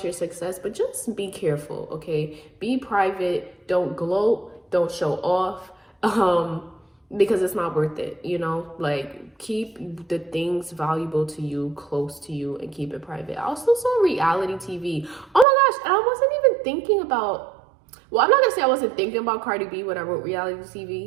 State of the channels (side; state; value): left; drops out; at 15.5 s